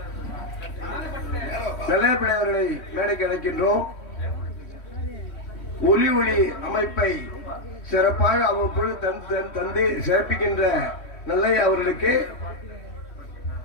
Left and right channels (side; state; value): right; late; 3.1 ms